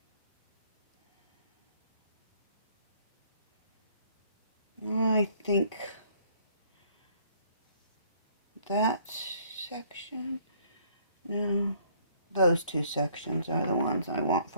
I think that section, no, those two sections are the ones I want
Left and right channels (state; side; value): inverted; both; correlation -0.62